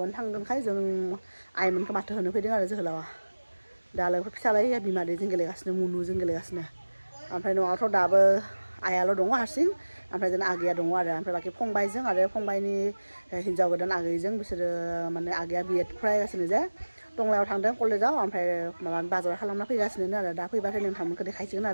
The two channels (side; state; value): both; inverted; correlation -1.00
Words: थांगोनखाय जों आइमोनखौ माथो होनो फैदों आरो जोहोलावा दा लोगोफोर फिसालाया बिमादैजों गेलेगासिनो मुनुजों गेलेगासिनो ओमफ्राय न'आवथ' दाबो आइयाल' दङ हारसिं ओमफ्राय जोंना आगैया दङ आरो ओमफ्राय बाखि फंबायजों आरो फंबायनि हिन्जाव गोदान आगैजों बिसोरो माने आगैया बिएड फरायगासिनो जे टंलायाव थांदों कलेजाव ओमफ्राय माबा बाजार खालामना फैगासिनो आरो दा फैबाथाय नोंथांमोनखौ देखायसिगोन